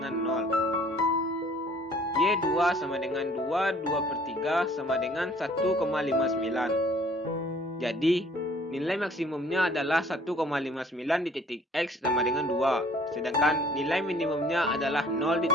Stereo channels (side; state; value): both; normal; correlation 0.56